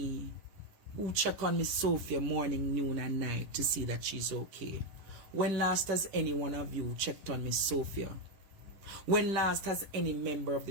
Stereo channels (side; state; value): left; late; 10 ms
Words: who check on Miss Sophia morning, noon and night to see that she's okay. When last has any one of you checked on Miss Sophia? When last has any member of